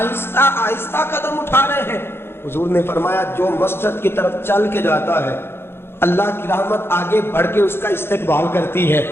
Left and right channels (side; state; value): right; late; 0.11 ms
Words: آہستہ قدم اٹھا رہے ہیں. حضور نے فرمایا جو مسجد کی طرف چل کے جاتا ہے اللہ کی رحمت آگے بڑھ کے اس کا استقبال کرتی ہے.